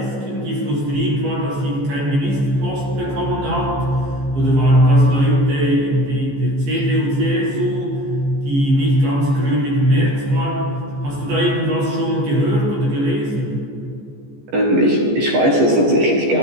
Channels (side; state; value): left; late; 14 ms